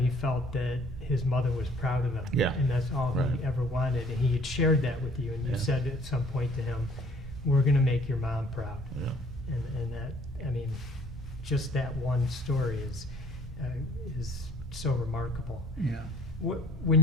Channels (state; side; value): normal; both; correlation 0.57